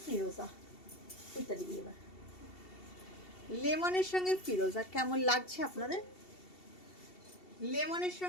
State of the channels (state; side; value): late; right; 2.7 ms